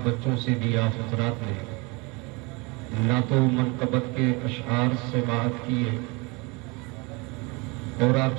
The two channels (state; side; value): quieter; left; 27.6 dB